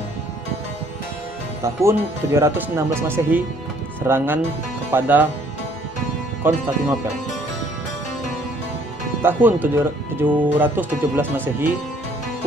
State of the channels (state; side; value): noise; left; rumble, 29 dB below the sound